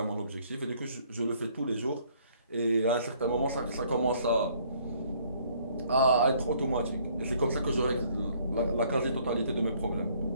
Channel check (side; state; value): both; inverted; correlation -0.63